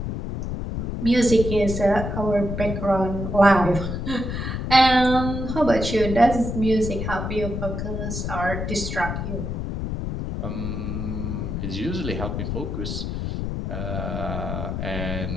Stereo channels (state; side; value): noise; left; rumble, 3 dB below the sound